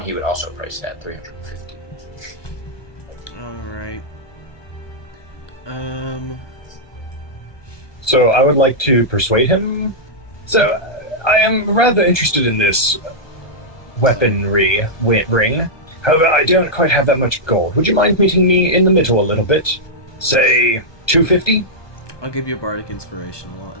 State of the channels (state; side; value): late; right; 1.2 ms